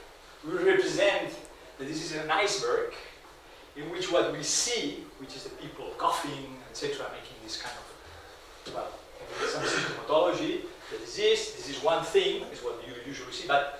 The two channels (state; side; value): identical; both; correlation 1.00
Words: we represent that this is an iceberg in which what we see, which is the people coughing, etc., making this kind of, some symptomatology, the disease, this is one thing, is what you usually see, but